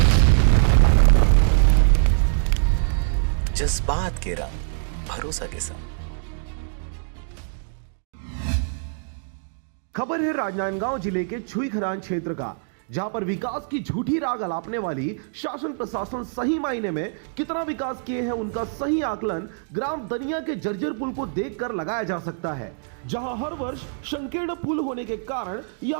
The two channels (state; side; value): silent; left; digital silence